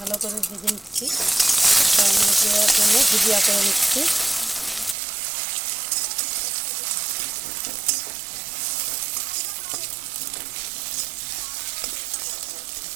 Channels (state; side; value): drops out; left; at 5.0 s